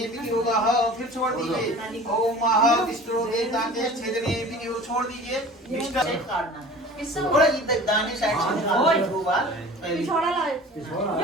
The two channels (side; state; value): both; normal; correlation 0.42